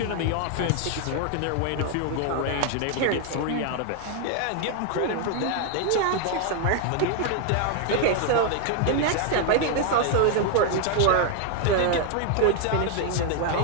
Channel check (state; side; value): different; both; correlation 0.00